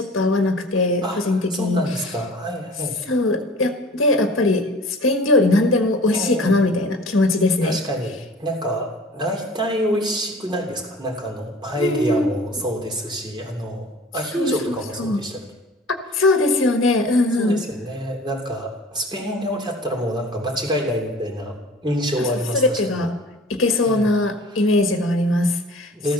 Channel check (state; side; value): normal; both; correlation 0.44